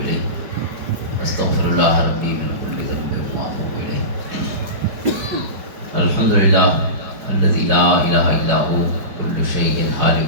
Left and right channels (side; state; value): left; late; 4.9 ms